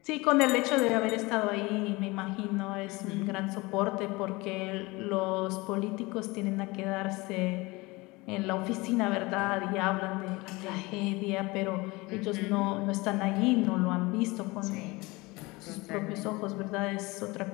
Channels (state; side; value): quieter; right; 23.3 dB